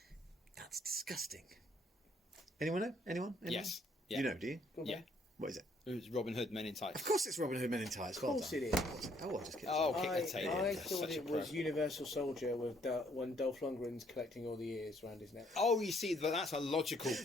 That's disgusting. Anyone know? Anyone? Yes. Yeah. You know, do you? Yeah. What is it? It was Robin Hood Men in Tights. Of course it's Robin Hood Men in Tights. Of course it is. Oh, I just kidding. Oh, kick the table. I That's thought such a it was pro. Universal Soldier with when Dolph Lundgren's collecting all the ears around his neck. Oh, you see, but that's a logical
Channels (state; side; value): normal; both; correlation 0.66